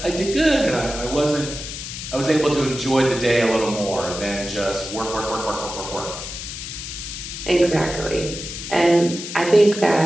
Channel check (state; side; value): noise; left; hiss, 8 dB below the sound